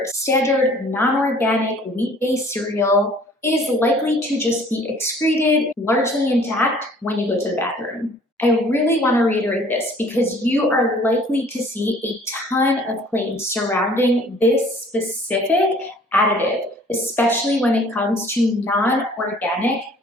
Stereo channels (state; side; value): normal; both; correlation 0.54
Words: standard non-organic wheat-based cereal is likely to just be excreted largely intact when you go to the bathroom. I really want to reiterate this because you are likely to see a ton of claims surrounding this specific additive, especially when it comes to non-organic